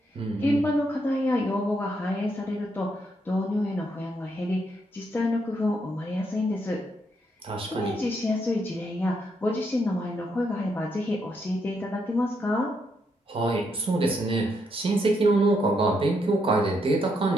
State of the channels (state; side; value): normal; both; correlation 0.77